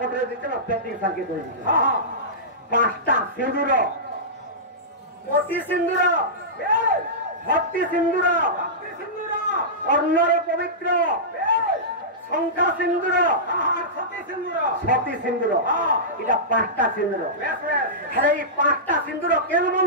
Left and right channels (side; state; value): both; normal; correlation -0.16